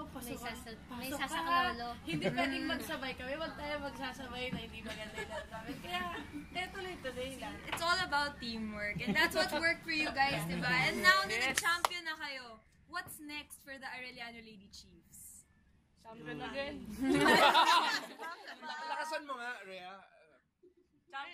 pasok ka. Hindi pwedeng magsabay kami. Huwag tayo magsasabay na hindi maganda yung namin. Kaya, tuloy-tuloy lang. It's all about teamwork. And that's what worked for you guys, diba? And now na nag-champion na kayo, what's next for the Arellano Lady Chiefs? Champion again. Lakasan mo nga, Rhea.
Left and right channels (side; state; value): both; identical; correlation 1.00